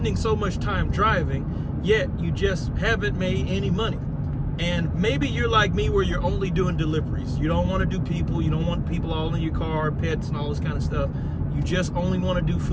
so much time driving, yet you just haven't made any money. And maybe you're like me, where you're only doing deliveries. You don't want to do people. You don't want people all in your car, pets, and all this kind of stuff. You just only want to do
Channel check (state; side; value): identical; both; correlation 1.00